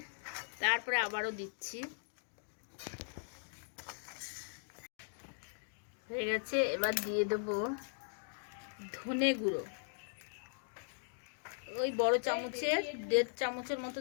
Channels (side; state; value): right; silent; digital silence